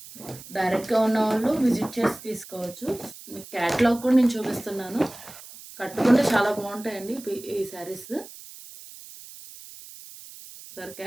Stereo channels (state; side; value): noise; right; hiss, 17 dB below the sound